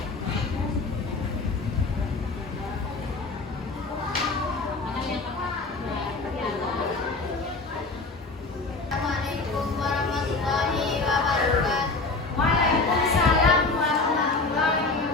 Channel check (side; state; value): right; quieter; 3.7 dB